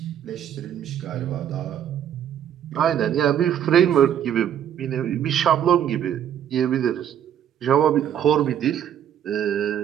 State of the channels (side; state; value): left; quieter; 9.8 dB